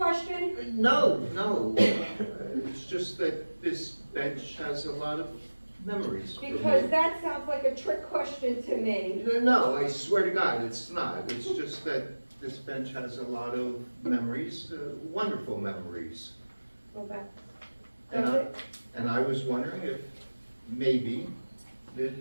No. It's just that this bench has a lot of memories for me. Because that sounds like a trick question to me. No, I swear to God, it's not. It's just that this bench has a lot of memories, wonderful memories. Well, that, And does I, it? and I was wondering if maybe it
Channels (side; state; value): both; inverted; correlation -1.00